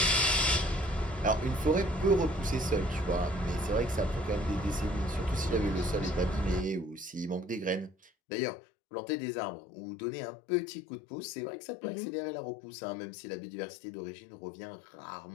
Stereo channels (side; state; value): right; drops out; at 8.1 s